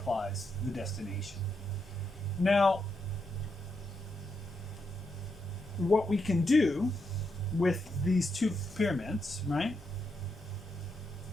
the destination. Now, what we can do with these two pyramids, right,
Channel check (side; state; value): both; normal; correlation 0.82